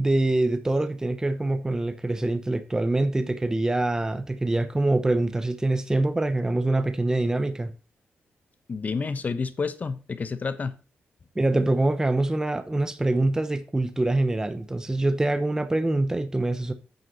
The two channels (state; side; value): normal; both; correlation 0.97